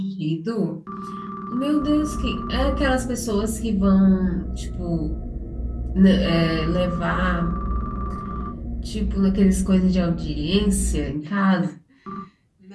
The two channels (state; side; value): identical; both; correlation 1.00